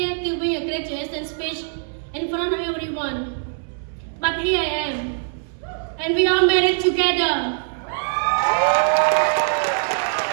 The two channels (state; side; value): silent; left; 64 dB below the other